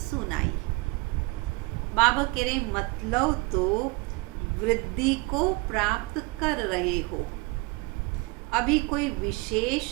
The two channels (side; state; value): left; quieter; 25.2 dB